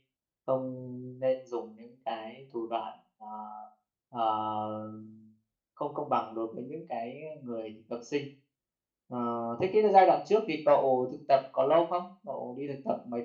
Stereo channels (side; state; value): both; identical; correlation 1.00